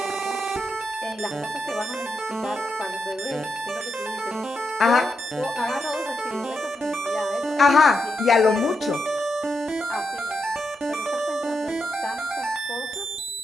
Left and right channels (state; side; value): normal; both; correlation 0.84